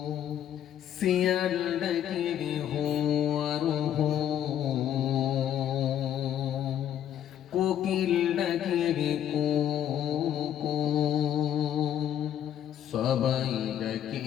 সিয়ান ডাকিবে কোকিল ডাকিবে কো, সবাই ডাকে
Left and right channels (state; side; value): quieter; right; 10.3 dB